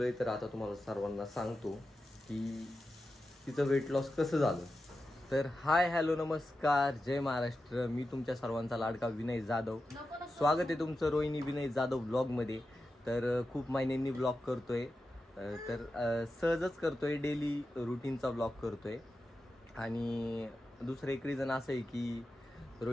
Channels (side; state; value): both; normal; correlation 0.91